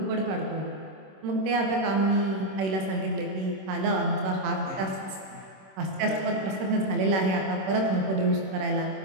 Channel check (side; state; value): left; late; 26 ms